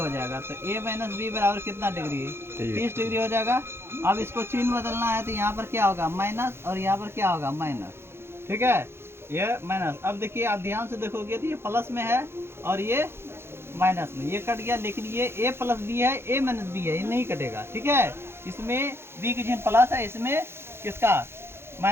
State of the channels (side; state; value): left; late; 0.12 ms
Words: जाएगा, तो A - B बराबर कितना डिग्री है 30 डिग्री हो जाएगा। अब इसको चिन्ह बदलना है तो यहाँ पर क्या होगा माइनस और यहाँ पर क्या होगा माइनस। ठीक है, ये माइनस। अब देखिए आप ध्यान से देखोगे तो ये प्लस में है और ये माइनस में, ये कट गया, लेकिन ये A + B है A - B है, ये नहीं कटेगा। ठीक है, इसमें B की चिन्ह प्लस है, इसमें किसका